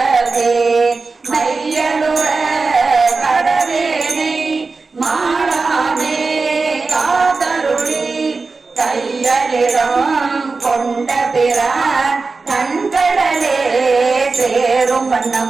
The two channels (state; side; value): quieter; left; 4.1 dB